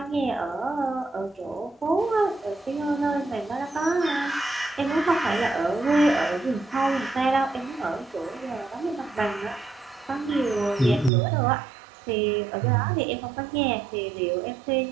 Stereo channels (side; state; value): left; drops out; at 11.1 s